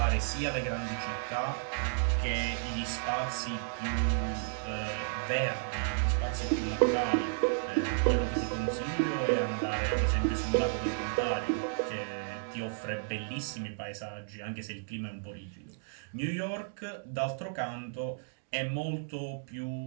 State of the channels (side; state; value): left; silent; digital silence